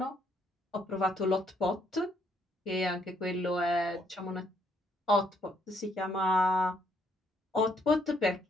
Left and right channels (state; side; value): normal; both; correlation 0.70